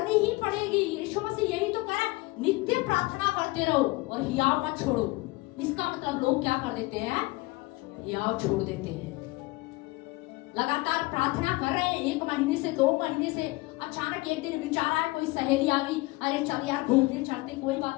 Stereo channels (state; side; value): quieter; right; 22.6 dB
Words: ही पड़ेगी। यीशु मसीह यही तो कह रहा है, नित्य प्रार्थना करते रहो और हियाव मत छोड़ो। इसका मतलब लोग क्या कर देते हैं, हियाव छोड़ देते हैं। लगातार प्रार्थना कर रहे हैं 1 महीने से 2 महीने से, अचानक एक दिन विचार आया, कोई सहेली आ गई, अरे चल यार घूमने चलते। कोई